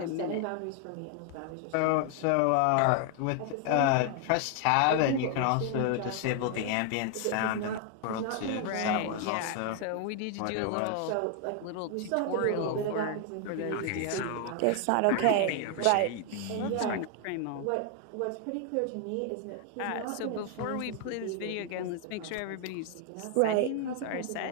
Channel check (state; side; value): different; both; correlation 0.00